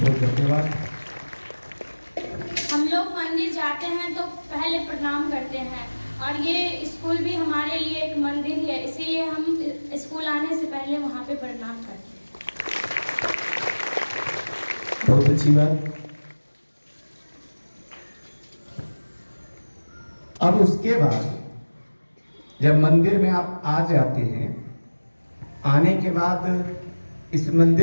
धन्यवाद। हम लोग मंदिर जाते हैं तो पहले प्रणाम करते हैं, और ये स्कूल भी हमारे लिए एक मंदिर है, इसीलिए हम स्कूल आने से पहले वहाँ पे प्रणाम करते हैं। बहुत अच्छी बात। अब उसके बाद जब मंदिर में आप आ जाते हैं, आने के बाद इस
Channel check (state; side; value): inverted; both; correlation -1.00